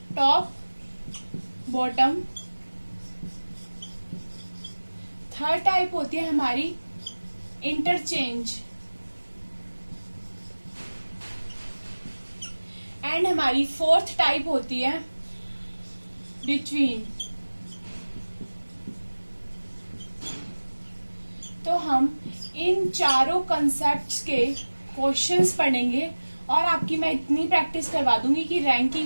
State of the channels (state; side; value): inverted; both; correlation -1.00